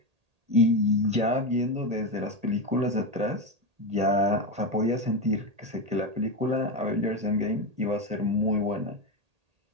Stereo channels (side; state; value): left; late; 1.8 ms